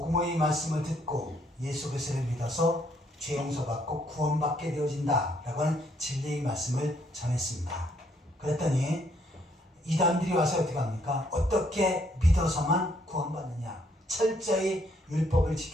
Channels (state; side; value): normal; both; correlation 0.69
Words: 말씀을 듣고 예수 그리스도를 믿어서 죄 용서받고 구원받게 되어진다 라고 하는 진리의 말씀을 전했습니다. 그랬더니 이단들이 와서 어떻게 합니까? 어떻게 믿어서만 구원받느냐? 철저히 율법을